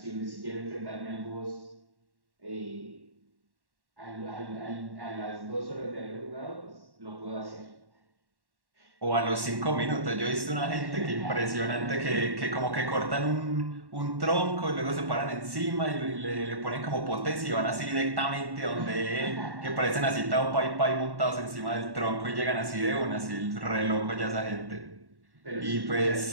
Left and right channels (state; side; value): late; left; 1.1 ms